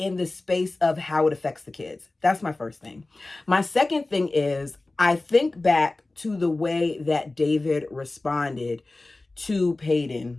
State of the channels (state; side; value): quieter; right; 3.0 dB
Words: the space of how it affects the kids. That's my first thing. My second thing is I think back to the way that David responded to